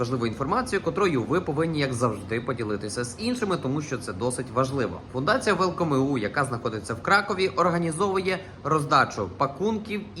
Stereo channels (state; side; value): identical; both; correlation 1.00